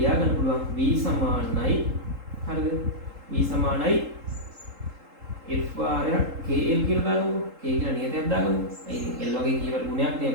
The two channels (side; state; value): left; late; 3.8 ms